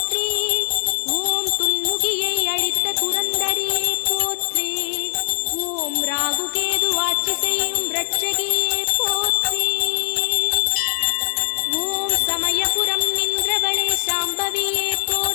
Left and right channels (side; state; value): right; silent; digital silence